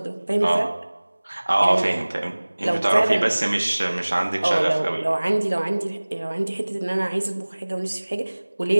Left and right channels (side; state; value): both; inverted; correlation -1.00